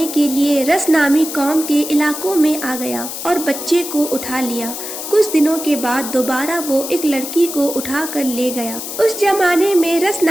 کے لیے رس نامی قوم کے علاقوں میں آ گیا اور بچے کو اٹھا لیا۔ کچھ دنوں کے بعد دوبارہ وہ ایک لڑکی کو اٹھا کر لے گیا۔ اس زمانے میں رس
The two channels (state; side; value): noise; left; hiss, 7 dB below the sound